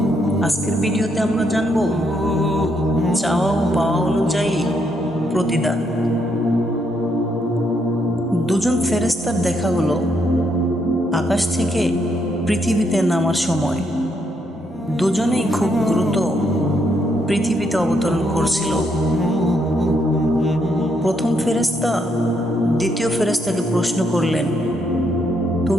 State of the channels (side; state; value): both; normal; correlation 0.75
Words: আজকের ভিডিওতে আমরা জানব চাওয়া ও পাওয়া অনুযায়ী প্রতিদান। দুজন ফেরেশতার দেখা হলো আকাশ থেকে পৃথিবীতে নামার সময়। দুজনেই খুব দ্রুত পৃথিবীতে অবতরণ করছিল। প্রথম ফেরেশতা দ্বিতীয় ফেরেশতাকে প্রশ্ন করলেন,